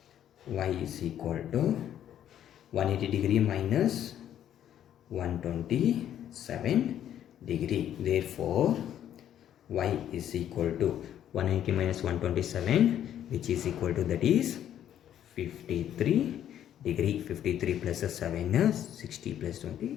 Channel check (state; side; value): quieter; right; 10.6 dB